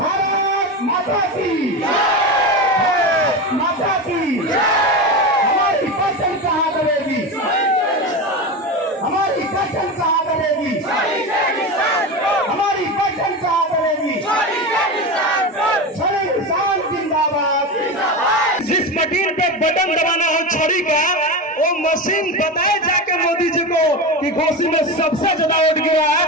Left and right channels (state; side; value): normal; both; correlation 0.21